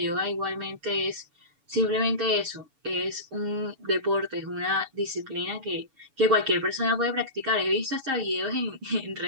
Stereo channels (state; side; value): late; left; 7.0 ms